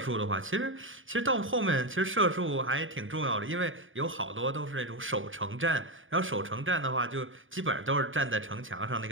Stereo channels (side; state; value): left; late; 0.58 ms